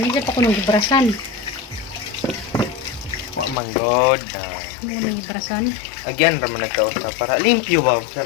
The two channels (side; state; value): right; drops out; at 3.6 s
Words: Isa pa ko nung gibrasan. Wa man god. Muna yung gibrasan. Again raman nagtao sa para limpyo ba